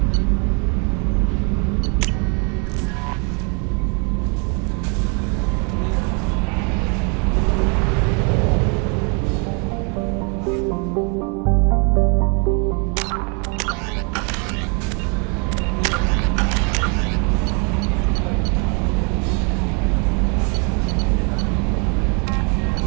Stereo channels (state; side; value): quieter; left; 35.1 dB